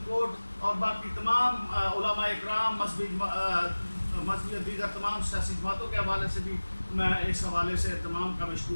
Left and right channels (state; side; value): inverted; both; correlation -1.00